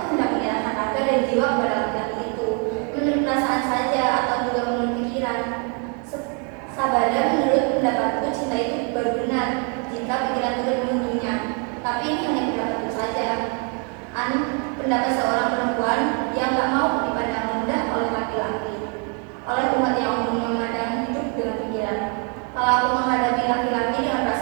hendak menyerahkan raga dan jiwa kepada laki-laki itu? Menurut perasaan saja atau juga menurut pikiran? Sabada menurut pendapatku pendapat seorang perempuan yang tak mau dipandang rendah oleh laki-laki, oleh umat yang umum memandang hidup dengan pikiran. Kalau aku menghadapi laki-laki dengan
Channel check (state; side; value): quieter; left; 37.5 dB